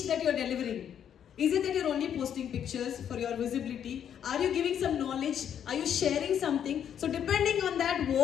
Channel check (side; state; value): right; quieter; 9.1 dB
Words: that you're delivering? Is it that you're only posting pictures for your visibility? Are you giving some knowledge? Are you sharing something? So depending on that,